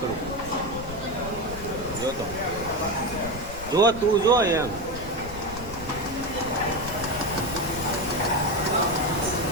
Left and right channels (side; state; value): left; noise; rumble, 12 dB below the sound